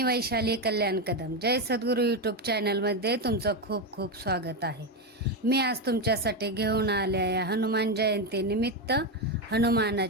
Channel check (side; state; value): both; normal; correlation 0.10